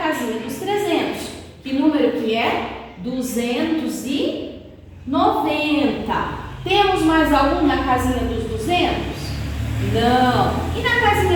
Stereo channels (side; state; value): both; identical; correlation 1.00